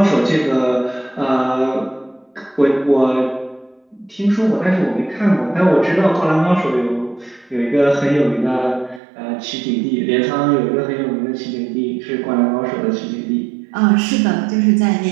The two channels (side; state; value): left; drops out; at 9.0 s